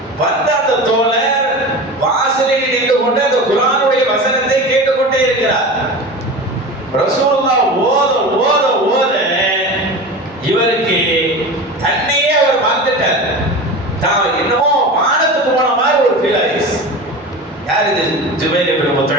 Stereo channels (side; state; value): both; normal; correlation 0.31